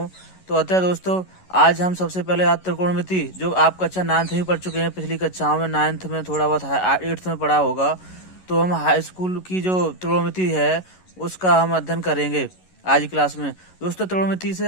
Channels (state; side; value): late; right; 11 ms